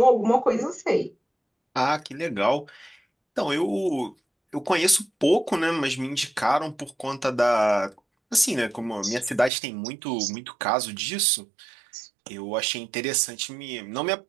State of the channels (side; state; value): left; drops out; at 9.5 s